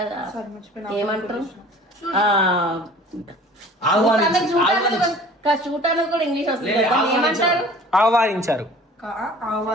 ఏమంటారు చూడటానికి కూడా ఇంగ్లీష్ వస్తుంది కదా, ఏమంటారు? ఆహ్వానించారు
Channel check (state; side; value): normal; both; correlation 0.47